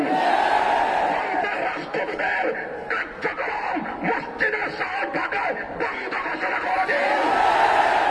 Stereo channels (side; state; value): both; identical; correlation 1.00